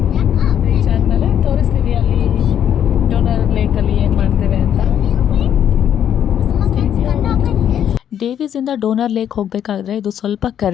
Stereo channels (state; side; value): quieter; right; 9.6 dB